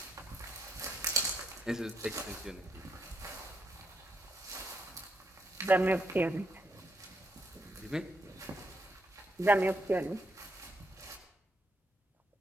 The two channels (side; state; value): both; normal; correlation 0.76